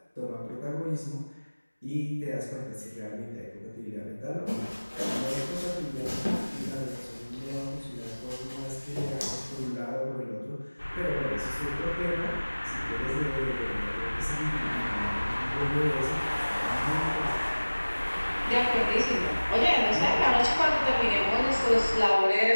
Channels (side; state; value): both; inverted; correlation -1.00